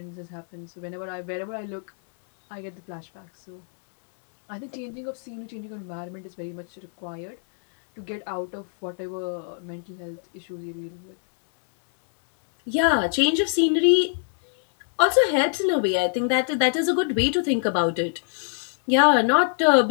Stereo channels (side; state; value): right; silent; digital silence